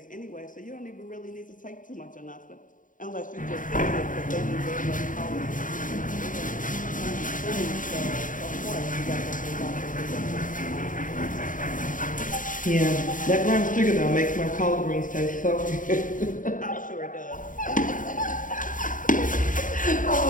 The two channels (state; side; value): late; right; 0.38 ms